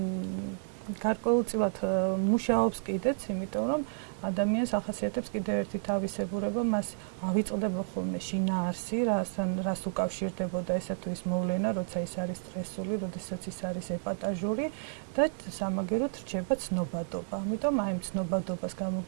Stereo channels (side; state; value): left; silent; 56 dB below the other